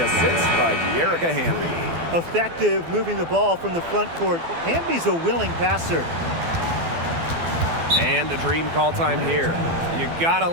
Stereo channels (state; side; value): late; left; 12 ms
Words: assist by De'Erica Hamby. Effective moving the ball from the front court. Hamby's a willing passer. And a dream call time here. You gotta